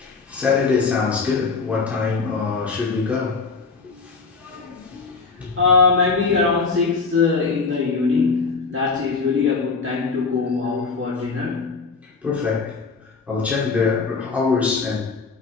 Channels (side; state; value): right; quieter; 4.6 dB